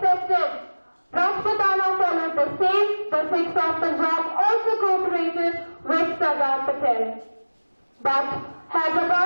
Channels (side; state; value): both; inverted; correlation -1.00